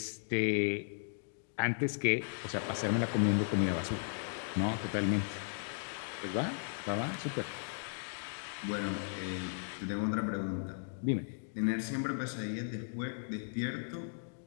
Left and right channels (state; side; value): silent; right; digital silence